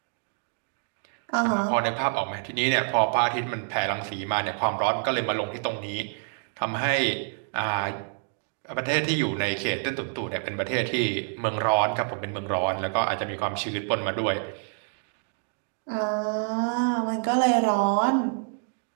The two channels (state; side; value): silent; left; 57 dB below the other